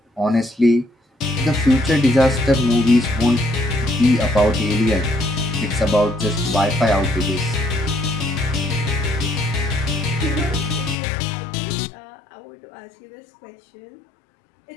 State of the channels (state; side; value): drops out; right; at 11.0 s